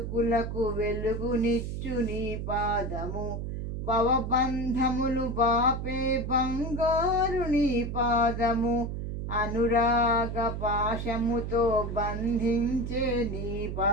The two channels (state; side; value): noise; right; hum, 4 dB below the sound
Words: వెలుగునిచ్చు నీ పాదము. భవబంధములు బాపే బంగారు నీ పాదము, అనురాగ పాశముతో బంధించే నీ